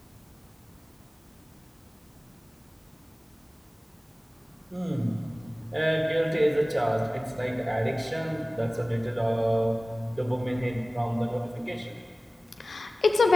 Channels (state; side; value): normal; both; correlation 0.97